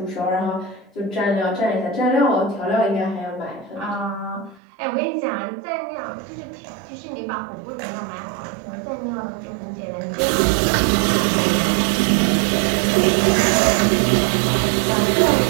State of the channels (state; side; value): drops out; left; at 4.6 s